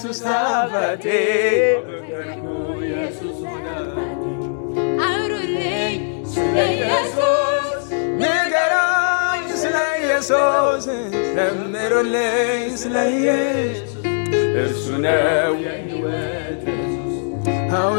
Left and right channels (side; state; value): right; silent; digital silence